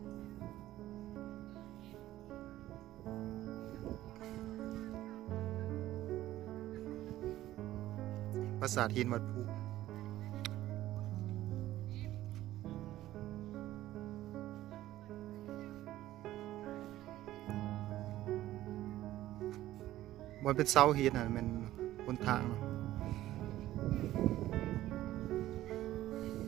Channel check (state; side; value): quieter; left; 14.7 dB